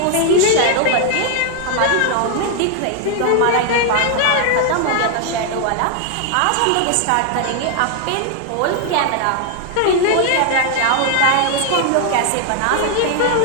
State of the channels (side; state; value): both; different; correlation 0.00